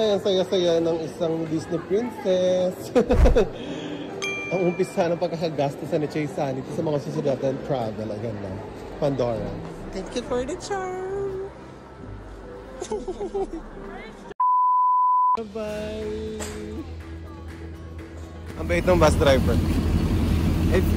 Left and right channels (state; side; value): identical; both; correlation 1.00